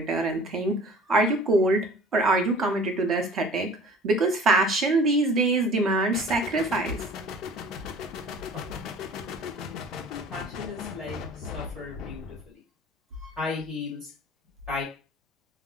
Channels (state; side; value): normal; both; correlation 0.46